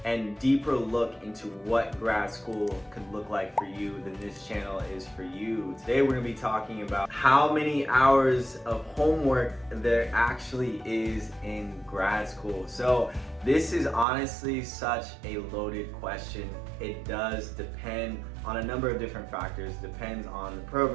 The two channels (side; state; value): left; drops out; at 14.1 s